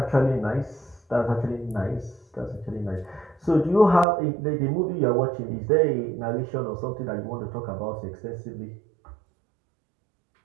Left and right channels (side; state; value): left; drops out; at 4.0 s